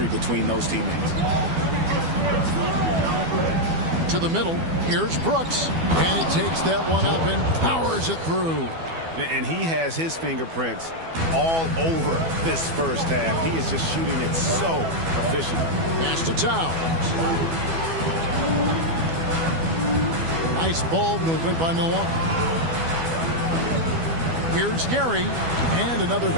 between those teammates. To the middle. Here's Brooks. And he takes that one up and powers it through. And he has his fingerprints all over this first half. He is just shooting it so efficiently. Pass to Towns. Nice ball movement by Milwaukee. Here's Gary. And another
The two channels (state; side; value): late; left; 12 ms